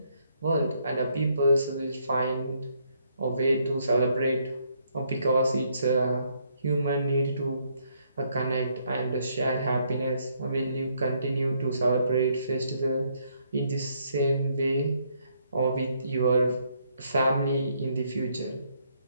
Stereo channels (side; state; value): both; inverted; correlation -0.72